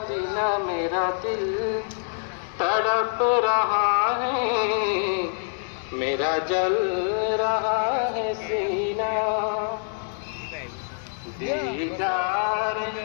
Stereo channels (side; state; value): right; silent; 61 dB below the other